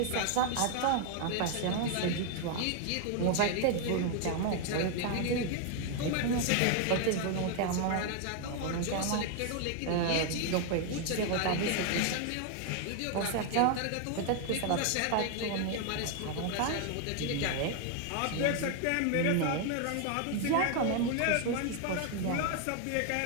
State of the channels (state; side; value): different; both; correlation 0.00